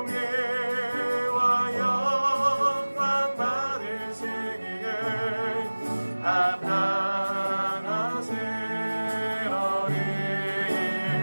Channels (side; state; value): both; inverted; correlation -1.00